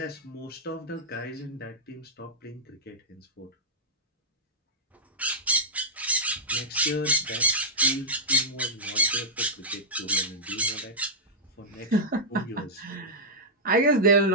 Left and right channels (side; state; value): both; normal; correlation -0.10